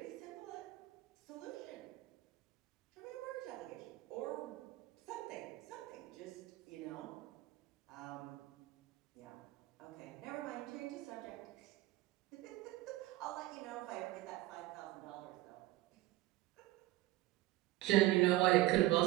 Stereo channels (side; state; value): left; quieter; 17.0 dB